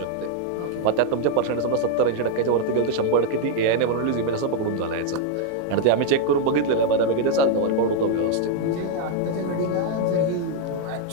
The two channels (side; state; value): both; different; correlation 0.00